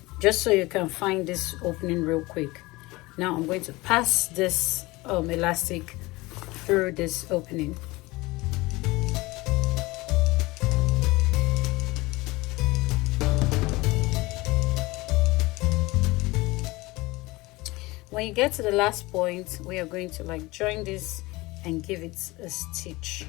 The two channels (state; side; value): quieter; right; 21.7 dB